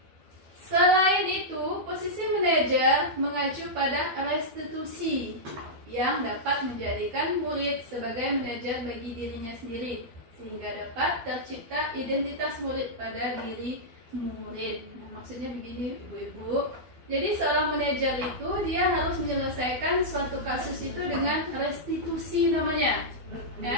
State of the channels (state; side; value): late; left; 12 ms